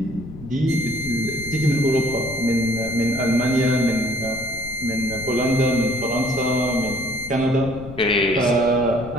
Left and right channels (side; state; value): left; noise; rumble, 14 dB below the sound